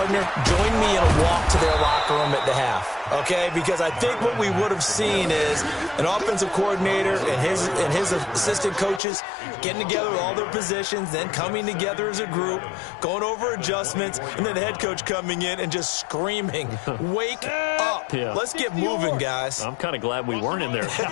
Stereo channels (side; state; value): right; drops out; at 9.0 s